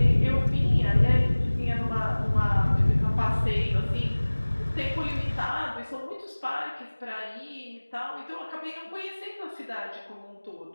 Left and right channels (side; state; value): both; inverted; correlation -1.00